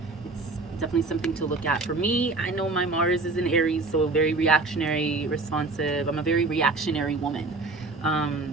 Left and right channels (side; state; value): left; quieter; 3.4 dB